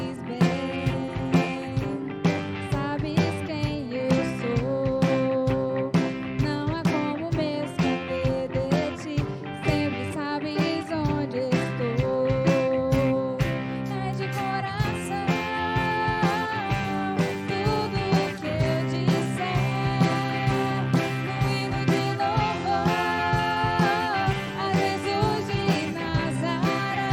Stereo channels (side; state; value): both; identical; correlation 1.00